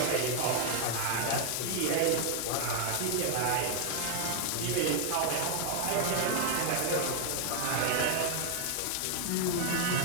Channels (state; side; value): different; both; correlation 0.00